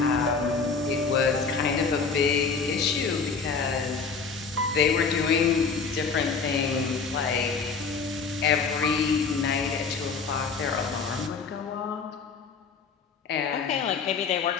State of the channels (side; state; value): right; quieter; 5.2 dB